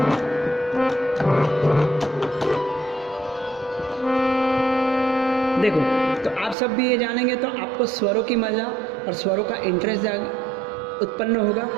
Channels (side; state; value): left; drops out; at 6.6 s